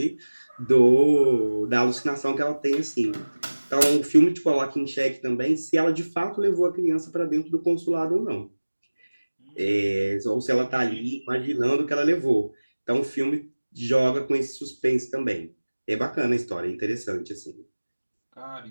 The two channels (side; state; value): both; inverted; correlation -1.00